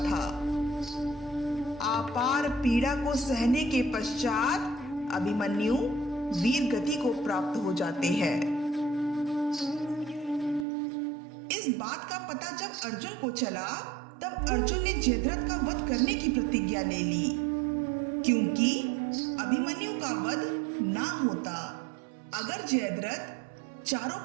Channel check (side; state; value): left; drops out; at 10.7 s